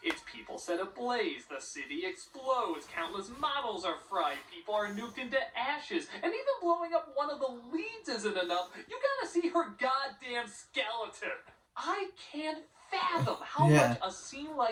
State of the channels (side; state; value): both; identical; correlation 1.00